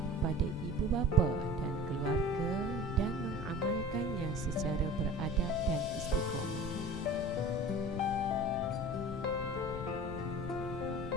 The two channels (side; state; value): left; noise; rumble, 8 dB below the sound